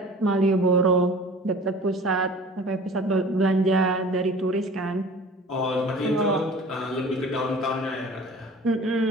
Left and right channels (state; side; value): normal; both; correlation 0.43